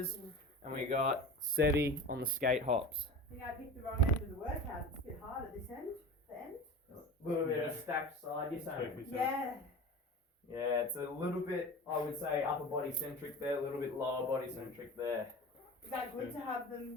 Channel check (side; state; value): both; normal; correlation 0.33